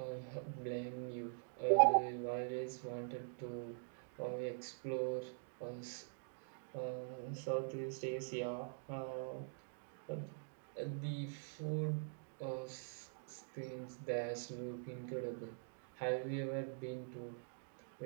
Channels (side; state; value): left; silent; digital silence